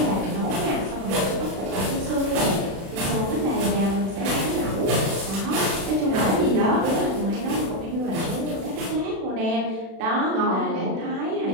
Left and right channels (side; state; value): left; late; 36 ms